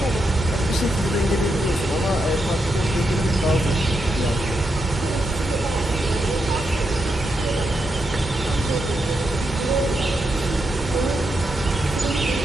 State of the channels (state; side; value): normal; both; correlation 0.84